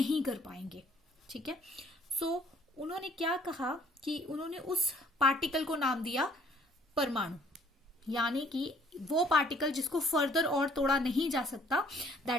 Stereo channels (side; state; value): both; normal; correlation 0.59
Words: कर पाएंगे, ठीक है। सो उन्होंने क्या कहा कि उन्होंने उस पार्टिकल को नाम दिया परमाणु, यानी कि वो पार्टिकल जिसको फर्दर और तोड़ा नहीं जा सकता